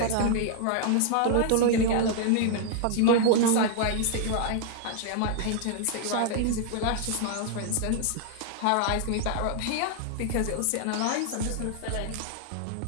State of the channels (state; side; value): different; both; correlation 0.00